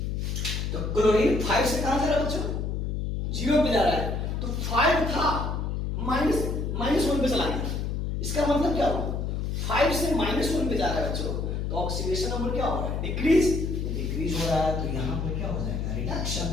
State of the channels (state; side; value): noise; left; hum, 1 dB below the sound